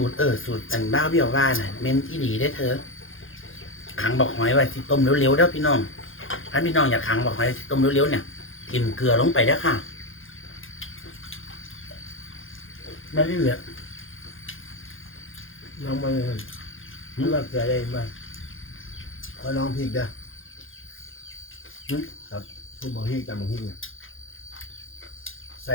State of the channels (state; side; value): late; right; 0.59 ms